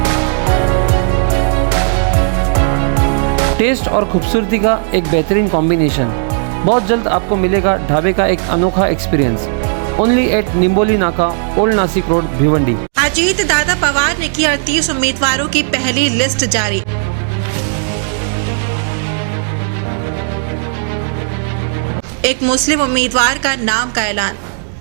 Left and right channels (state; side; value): silent; left; digital silence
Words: टेस्ट और खूबसूरती का एक बेहतरीन कॉम्बिनेशन। बहुत जल्द आपको मिलेगा ढाबे का एक अनोखा एक्सपीरियंस। ओनली एट निम्बोली नाका, ओल्ड नासिक रोड, भिवंडी। अजीत दादा पवार ने की 38 उम्मीदवारों की पहली लिस्ट जारी। एक मुस्लिम उम्मीदवार का नाम का ऐलान।